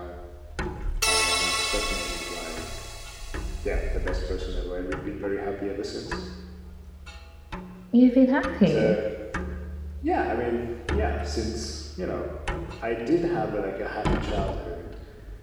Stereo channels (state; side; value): identical; both; correlation 1.00